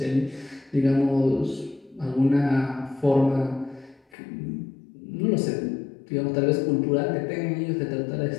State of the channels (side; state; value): right; drops out; at 4.0 s